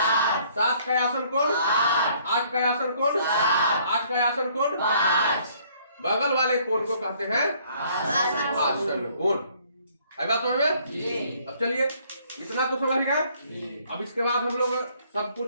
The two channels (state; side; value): inverted; both; correlation -0.62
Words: 7 का आसन कोण 8 का आसन कोण 8 का आसन कोण। बगल वाले कोण को कहते हैं आसन कोण। है बात समझ में? अब चलिए इतना तो समझ गए। अब इसके बाद हम लोग सब